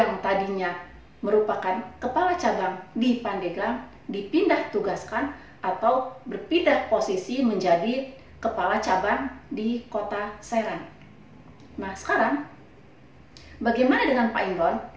tadinya merupakan kepala cabang di Pandeglang, dipindah tugaskan atau berpindah posisi menjadi kepala cabang di kota Serang. Nah sekarang, bagaimana dengan Pak Imron?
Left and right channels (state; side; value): identical; both; correlation 1.00